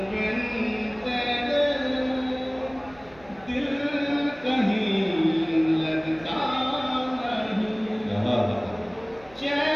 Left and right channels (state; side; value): noise; right; rumble, 25 dB below the sound